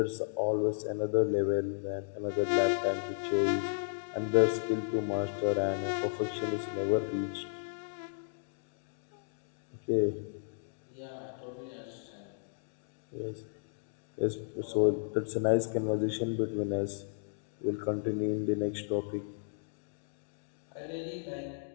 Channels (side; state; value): right; silent; digital silence